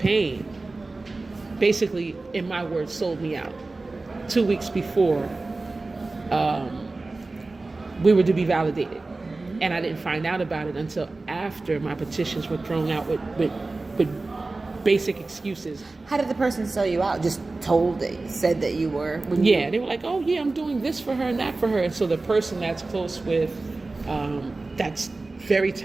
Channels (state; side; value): quieter; left; 3.4 dB